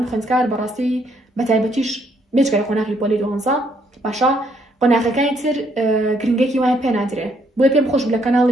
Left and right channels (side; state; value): both; normal; correlation 0.70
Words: خوێندکار بەڕاستی بە تایبەتیش بێجگەرە قۆناغی پۆلی 12 باشە قۆناغەکانی تر گرنگێکی وایە پێ نادرێ بۆیە پێم خۆش لە